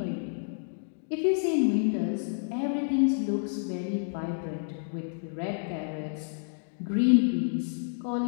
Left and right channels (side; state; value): right; silent; digital silence